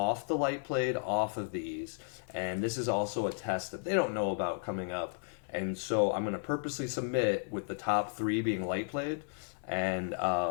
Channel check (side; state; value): right; silent; digital silence